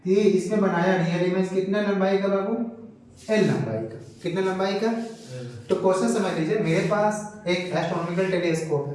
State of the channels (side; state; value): both; identical; correlation 1.00